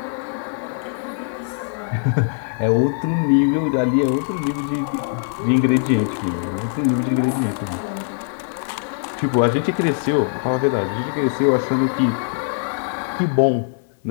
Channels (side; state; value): right; silent; 62 dB below the other